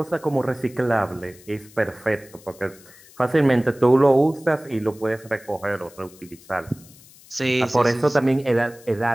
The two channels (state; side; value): noise; left; hiss, 24 dB below the sound